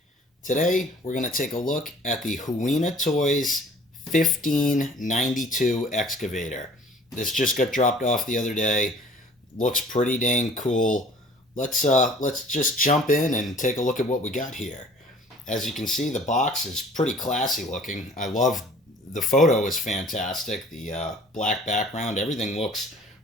Today we're going to take a look at the HUINA Toys 1592 excavator. This just got dropped off the other day. Looks pretty dang cool. Let's just jump in and take a look at what we got here. As you can see, the box is pretty classy looking. I love the photo is fantastic. The black background, everything looks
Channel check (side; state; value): both; normal; correlation 0.50